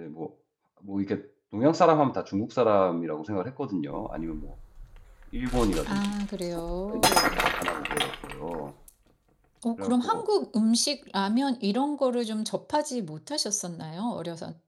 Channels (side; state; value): both; identical; correlation 1.00